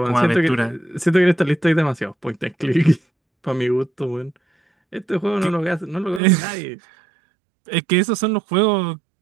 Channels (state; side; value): drops out; left; at 6.2 s